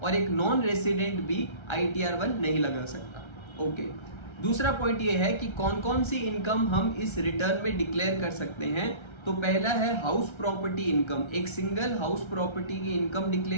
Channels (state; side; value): late; right; 1.3 ms